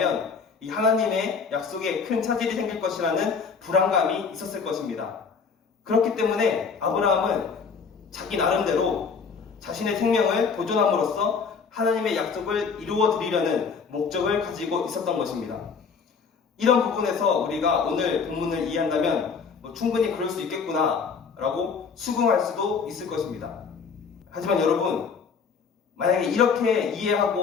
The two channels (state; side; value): quieter; right; 5.6 dB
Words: 이 하나님의 약속에 큰 차질이 생길 것이라는 불안감이 있었을 것입니다. 그렇기 때문에 아브라함은 자기 나름대로 자신의 생명을 보존함으로써 하나님의 약속을 이루어 드리려는 목적을 가지고 있었던 것입니다. 이런 부분에서 우리가 오늘 본문을 이해한다면 충분히 그럴 수 있겠구나 라고 수긍할 수도 있을 것입니다. 하지만 여러분, 만약에 이렇게